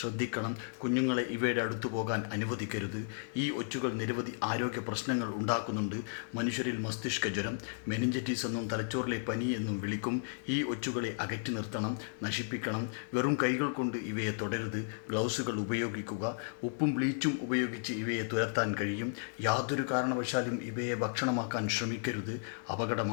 കുഞ്ഞുങ്ങളെ ഇവയുടെ അടുത്തു പോകാൻ അനുവദിക്കരുത്. ഈ ഒച്ചുകൾ നിരവധി ആരോഗ്യ പ്രശ്നങ്ങൾ ഉണ്ടാക്കുന്നുണ്ട്. മനുഷ്യരിൽ മസ്തിഷ്ക ജ്വരം, മെനിഞ്ചറ്റിസ് എന്നും തലച്ചോറിലെ പനി എന്നും വിളിക്കും. ഈ ഒച്ചുകളെ അകറ്റി നിർത്തണം, നശിപ്പിക്കണം. വെറും കൈകൾ കൊണ്ട് ഇവയെ തൊടരുത്. ഗ്ലൗസുകൾ ഉപയോഗിക്കുക. ഉപ്പും ബ്ലീച്ചും ഉപയോഗിച്ച് ഇവയെ തുരത്താൻ കഴിയും. യാതൊരു കാരണവശാലും ഇവയെ ഭക്ഷണമാക്കാൻ ശ്രമിക്കരുത്.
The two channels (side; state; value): right; silent; 55 dB below the other